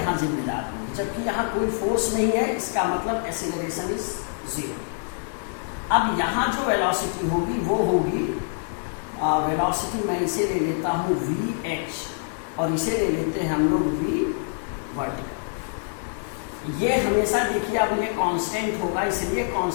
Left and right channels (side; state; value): right; silent; digital silence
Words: जिम्मेदार होगी, जबकि यहां कोई फोर्स नहीं है। इसका मतलब एक्सेलरेशन इज 0। अब यहां जो वेलोसिटी होगी वो होगी वेलोसिटी, मैं इसे ले लेता हूं VH और इसे ले लेते हैं हम लोग V वर्टिकल। ये हमेशा देखिए अब ये कांस्टेंट होगा, इसलिए